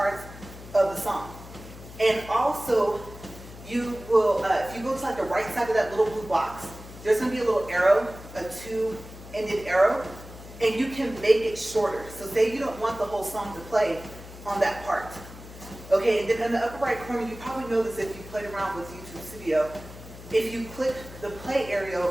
of the song. And also, you will, if you go to like the right side of that little blue box, there's going to be a little arrow, a two-ended arrow, and you can make it shorter. So say you don't want the whole song to play on that part. Okay, and then in the upper right corner, you probably know this if you played around with YouTube Studio. If you click the play area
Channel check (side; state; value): left; noise; hum, 16 dB below the sound